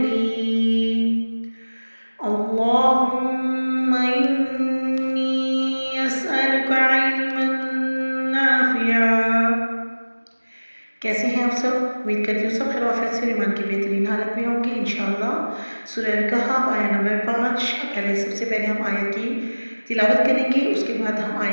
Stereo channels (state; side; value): inverted; both; correlation -1.00